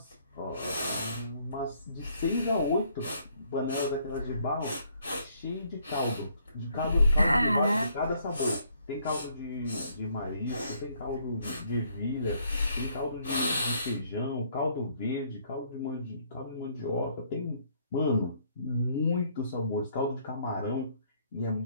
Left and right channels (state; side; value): inverted; both; correlation -0.66